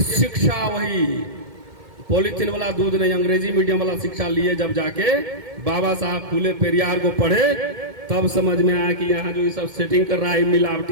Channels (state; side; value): late; left; 2.2 ms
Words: शिक्षा वही पॉलिथीन वाला दूध नहीं, अंग्रेजी मीडियम वाला शिक्षा लिए जब जाके बाबा साहब फूले पेरियार को पढ़े, तब समझ में आया कि यहाँ जो ये सब सेटिंग कर रहा है